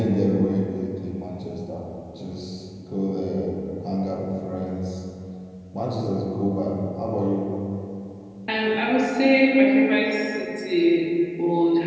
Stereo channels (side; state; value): both; identical; correlation 1.00